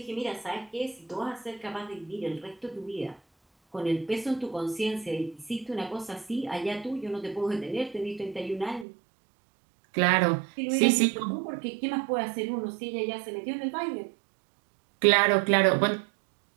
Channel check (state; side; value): drops out; left; at 8.8 s